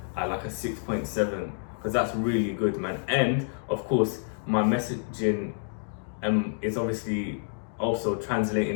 at like a 6.7, because that's really good, man. And of course, my messaging is obviously also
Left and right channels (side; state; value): right; silent; 59 dB below the other